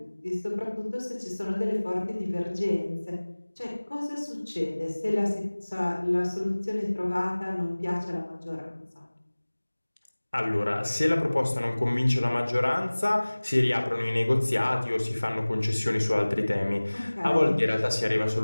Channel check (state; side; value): inverted; both; correlation -1.00